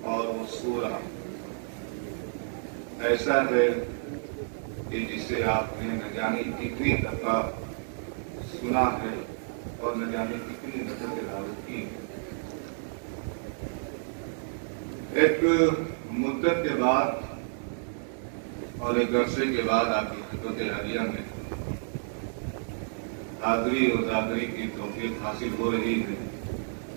اور وہ سورہ ایسا ہے کہ جسے آپ نے نہ جانے کتنی دفعہ سنا ہے اور نہ جانے کتنی دفعہ تلاوت کی ہے. ایک مدت کے بعد اور ایک عرصے کے بعد آپ کی خدمت عالیہ میں حاضری اور زادری کی توفیق حاصل ہو رہی ہے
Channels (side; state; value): left; silent; digital silence